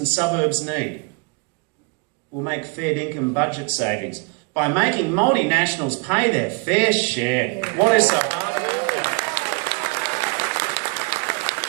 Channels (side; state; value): left; quieter; 30.5 dB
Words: suburbs need. We'll make fair income budget savings by making multinationals pay their fair share. What is so hard about that?